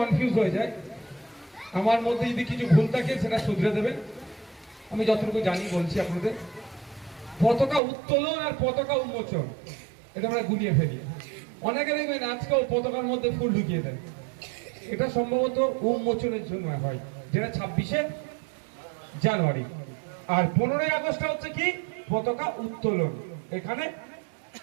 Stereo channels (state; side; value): drops out; left; at 7.8 s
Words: হয়ে যায়, আমার মধ্যে যদি কিছু ভুল থাকে সেটা শুধরে দেবেন। আমি যতটুকু জানি বলছি আপনাদের। পতাকা উত্তোলন আর পতাকা উন্মোচন এটা আমরা গুলিয়ে ফেলি। অনেকে দেখবেন আজকেও পতাকার মধ্যে ফুল ঢুকিয়ে দেয়। এটা সম্ভবত উন্মোচনের জন্য হয়, যেটা ২৬শে জানুয়ারি। আর ১৫ই আগস্ট হচ্ছে কি পতাকা উত্তোলন, এখানে